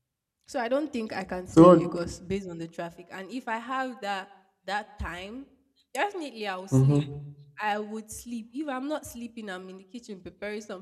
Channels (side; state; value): both; identical; correlation 1.00